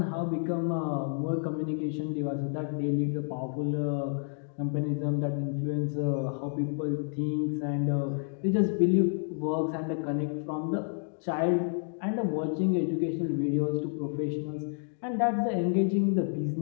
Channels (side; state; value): right; silent; 58 dB below the other